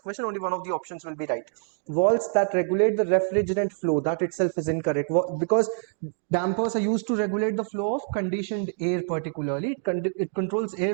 question, only one of the options will be right. Walls that regulate the refrigerant flow, that itself is incorrect, because dampers are used to regulate the flow of conditioned air. Particularly it controls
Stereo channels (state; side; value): silent; left; digital silence